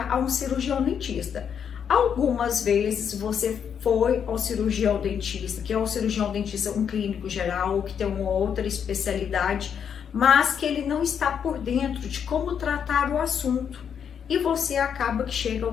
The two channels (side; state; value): right; quieter; 7.8 dB